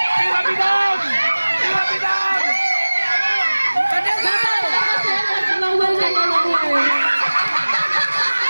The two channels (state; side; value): inverted; both; correlation -1.00